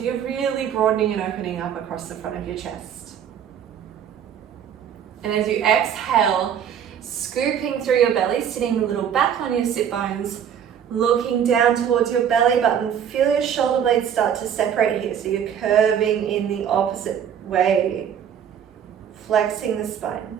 you're really broadening and opening up across the front of your chest. And as you exhale, scooping through your belly, sitting a little back on your sit bones, looking down towards your belly button, feel your shoulder blades start to separate here, so you're curving in the opposite way, flexing the spine.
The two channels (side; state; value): left; quieter; 8.7 dB